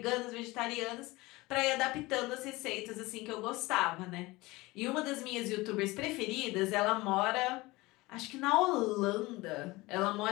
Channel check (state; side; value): quieter; right; 21.3 dB